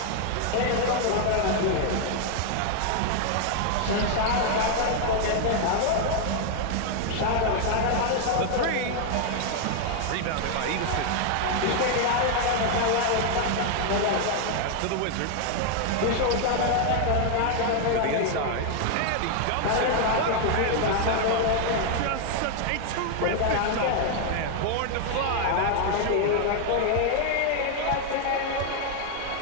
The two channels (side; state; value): both; different; correlation 0.00